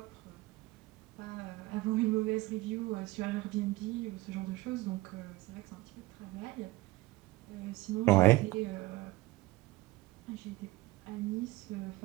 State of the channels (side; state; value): left; quieter; 19.3 dB